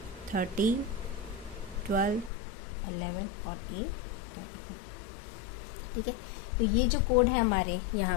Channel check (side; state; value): right; drops out; at 2.3 s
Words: 13, 12, 11 और A 10 को, ठीक है। तो ये जो कोड है हमारे